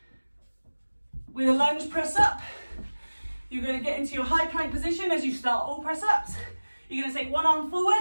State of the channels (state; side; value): inverted; both; correlation -1.00